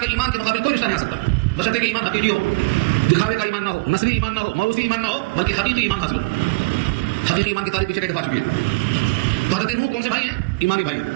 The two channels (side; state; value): left; quieter; 25.9 dB